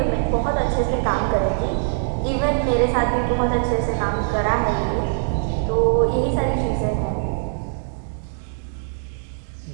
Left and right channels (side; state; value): left; silent; digital silence